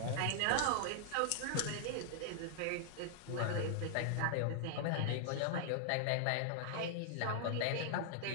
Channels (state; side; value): different; both; correlation -0.01